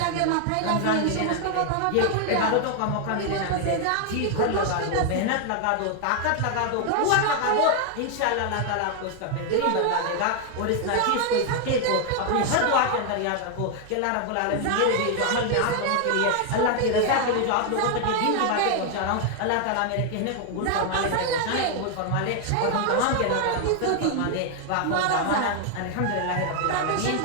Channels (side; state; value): both; different; correlation 0.00